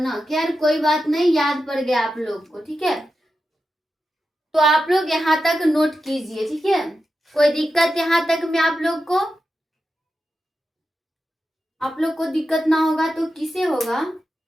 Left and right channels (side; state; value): both; normal; correlation 0.90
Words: खैर कोई बात नहीं, याद पड़ गया आप लोग को, ठीक है। तो आप लोग यहाँ तक नोट कीजिए, ठीक है। कोई दिक्कत यहाँ तक में आप लोग को? आप लोग को दिक्कत ना होगा तो किसे होगा?